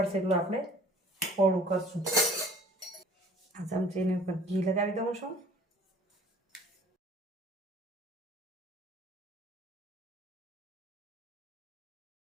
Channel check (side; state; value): both; normal; correlation 0.51